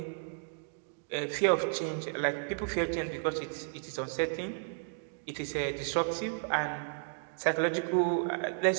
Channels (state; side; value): silent; left; digital silence